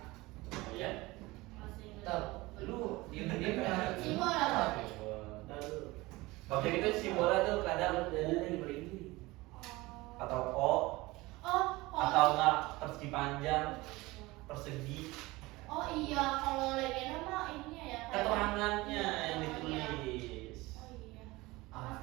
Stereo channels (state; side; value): quieter; left; 21.1 dB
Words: Oh ya? Masih Tab, lu diam-diam kan. simbol apa? Objek itu simbolnya tuh kadang atau O Oh, atau enggak persegi panjang, persegi, Oh iya, kalau legenda mah ininya ya. kayak- keterangannya yang Oh, ditulis. Oh iya.